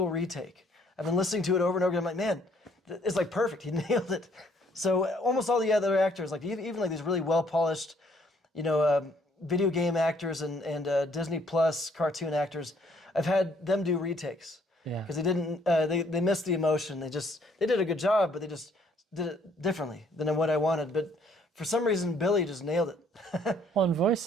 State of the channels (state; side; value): normal; both; correlation 0.64